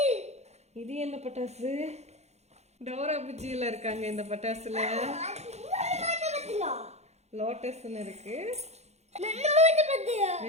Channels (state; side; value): late; left; 0.32 ms